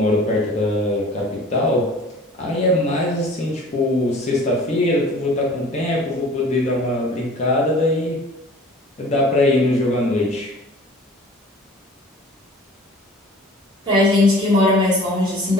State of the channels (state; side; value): normal; both; correlation 0.46